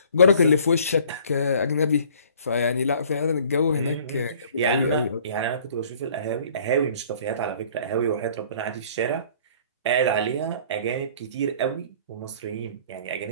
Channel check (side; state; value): both; inverted; correlation -0.53